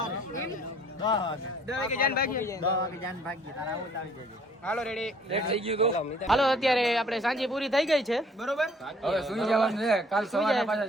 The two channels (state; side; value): normal; both; correlation 0.57